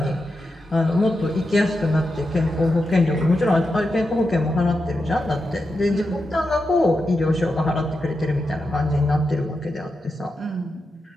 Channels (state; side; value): normal; both; correlation 0.88